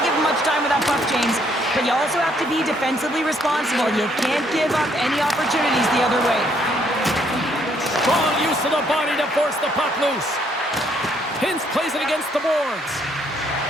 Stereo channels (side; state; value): both; normal; correlation 0.69